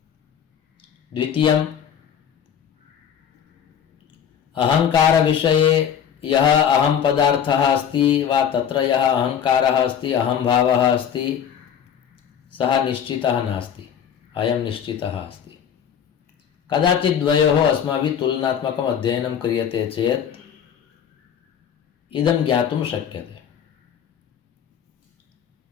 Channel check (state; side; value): quieter; right; 8.4 dB